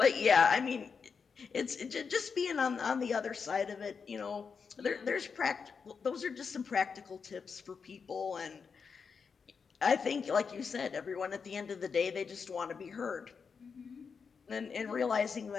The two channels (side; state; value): right; quieter; 5.7 dB